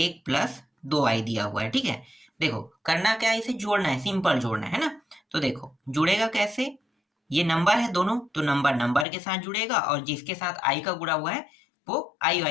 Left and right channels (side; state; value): right; drops out; at 9.1 s